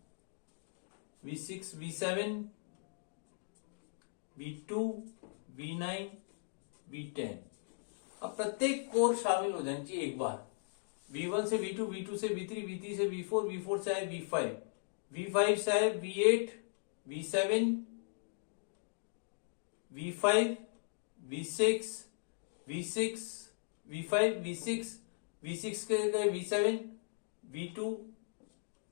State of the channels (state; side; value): silent; right; digital silence